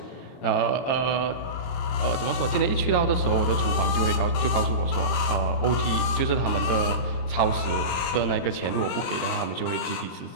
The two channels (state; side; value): late; right; 23 ms